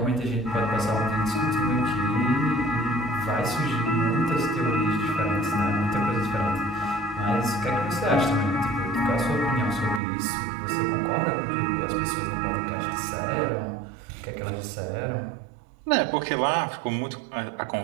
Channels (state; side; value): drops out; left; at 10.0 s